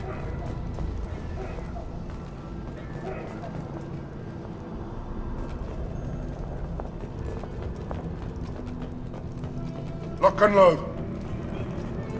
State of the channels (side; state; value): both; identical; correlation 1.00